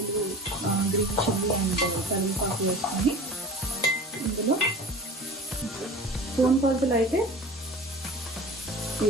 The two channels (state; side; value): normal; both; correlation 0.37